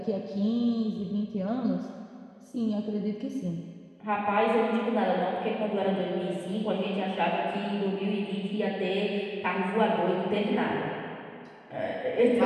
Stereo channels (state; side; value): identical; both; correlation 1.00